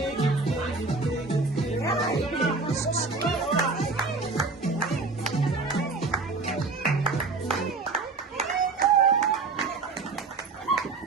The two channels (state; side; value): quieter; left; 3.9 dB